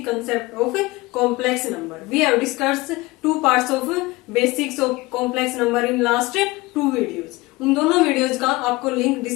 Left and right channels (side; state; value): right; quieter; 21.7 dB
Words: concept of complex number. We have discussed two parts of basics of complex number in last two videos. उन दोनों videos का आपको link